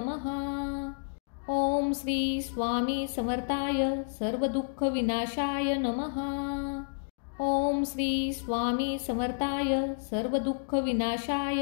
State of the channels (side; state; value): right; silent; digital silence